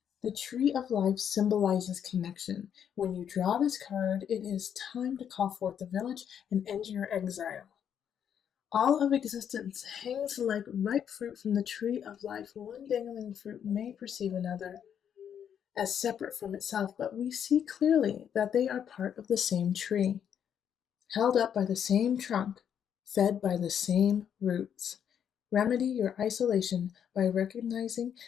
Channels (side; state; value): right; quieter; 8.6 dB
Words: The tree of life symbolizes connection. When you draw this card, it is time to call forth the village and end your exile. All of existence hangs like ripe fruit from the tree of life. One dangling fruit may perceive another as separate from itself, but we see clearly that they are part of the same tree, held up by the same trunk, fed by the same roots. Remedy your isolation by recognizing